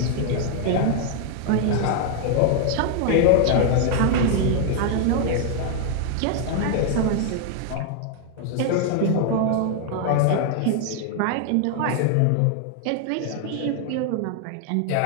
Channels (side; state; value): both; different; correlation 0.00